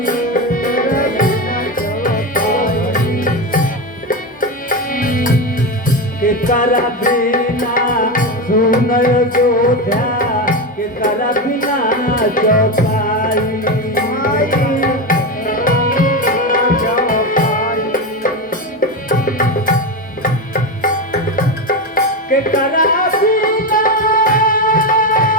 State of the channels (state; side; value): normal; both; correlation 0.16